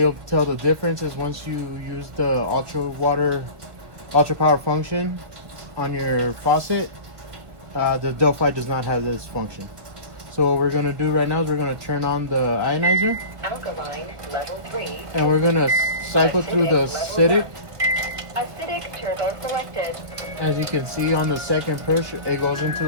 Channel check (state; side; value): late; left; 1.5 ms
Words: tell the difference is once you use the UltraPower function on your faucet, the Delphi does not have this function. So what we're going to do right now is we're going to turn on the ionizer. Alkaline level 3. And we're going to cycle through the acidic. Acidic turbo selected. As you can see on the second push, it goes into